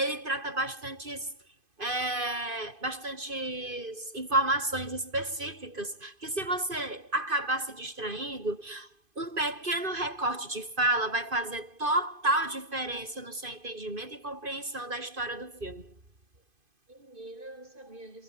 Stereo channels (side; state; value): left; late; 2.5 ms